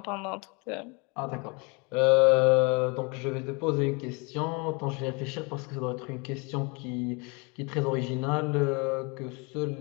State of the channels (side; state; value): right; quieter; 30.4 dB